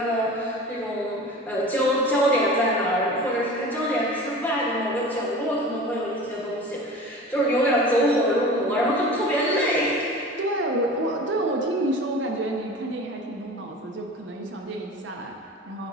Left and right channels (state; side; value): normal; both; correlation 0.37